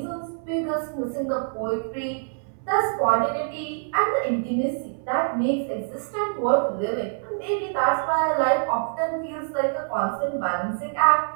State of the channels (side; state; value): left; silent; digital silence